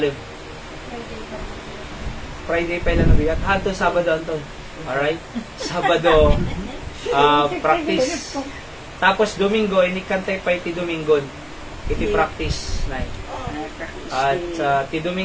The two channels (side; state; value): both; identical; correlation 1.00